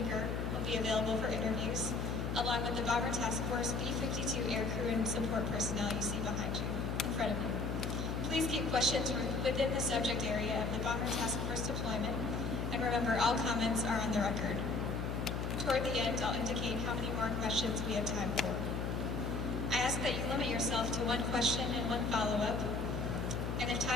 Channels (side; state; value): left; noise; hum, 2 dB below the sound